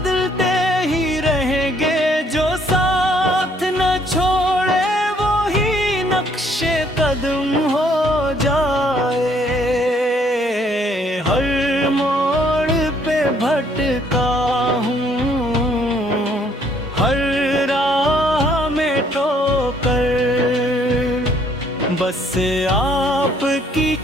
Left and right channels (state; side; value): normal; both; correlation 0.65